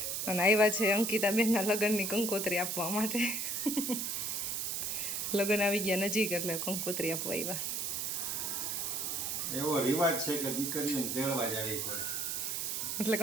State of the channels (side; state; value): right; noise; hiss, 1 dB below the sound